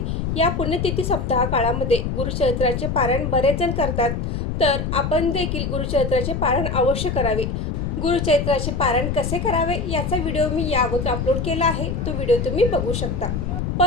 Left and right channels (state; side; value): noise; left; rumble, 2 dB below the sound